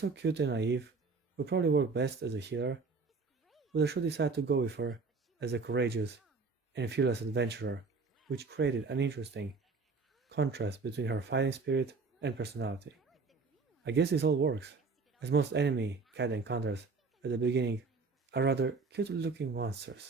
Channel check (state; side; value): quieter; left; 4.4 dB